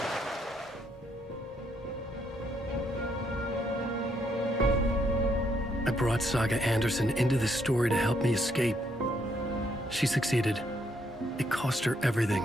I brought Saga Anderson into this story to help me escape. She succeeded. It cost her everything.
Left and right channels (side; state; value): both; normal; correlation 0.73